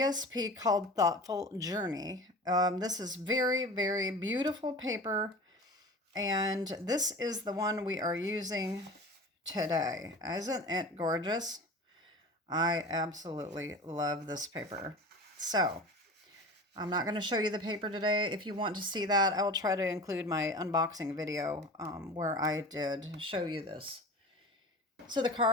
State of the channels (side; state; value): both; normal; correlation 0.35